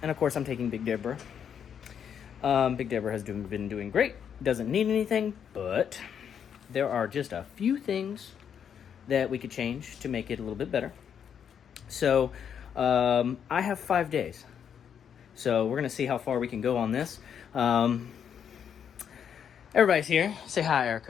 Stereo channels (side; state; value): right; quieter; 8.1 dB